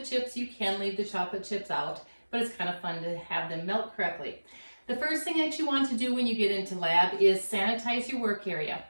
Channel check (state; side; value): inverted; both; correlation -1.00